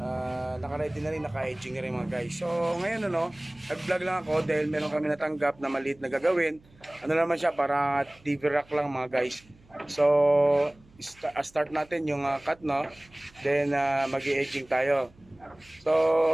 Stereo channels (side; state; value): right; noise; hum, 28 dB below the sound